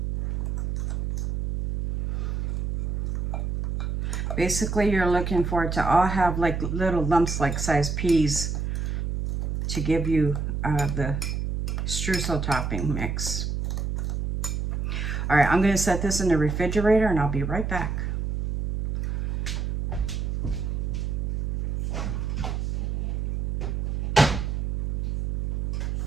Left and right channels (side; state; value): right; noise; hum, 1 dB below the sound